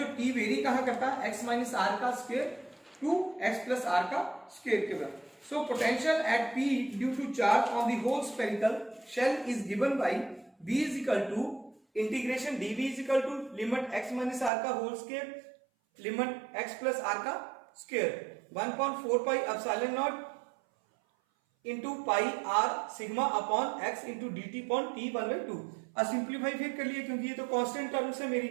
टी वेरी कहां करता है, एक्स माइनस आर का square to x plus r का स्क्वायर के बराबर। So potential at p due to charge on the whole spherical shell is given by b is equal to integration d v is equal to limit x minus r का whole square limit x plus r का square 1.4 pi epsilon naught into पाई r sigma upon x into d t upon t 1/2। अब simplify फिर कर लिए, क्योंकि ये तो constant terms है मेरी,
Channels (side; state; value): left; drops out; at 14.5 s